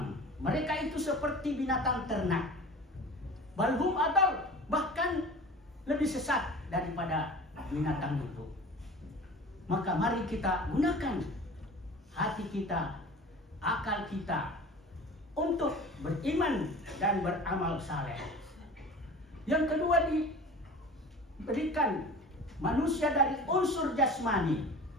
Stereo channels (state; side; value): normal; both; correlation 0.39